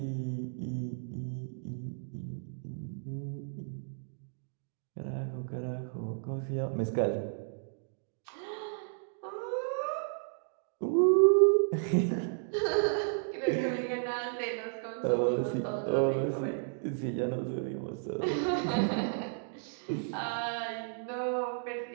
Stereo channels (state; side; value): silent; left; digital silence